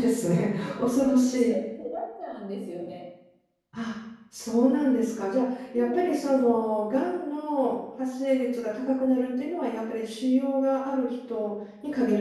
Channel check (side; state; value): both; identical; correlation 1.00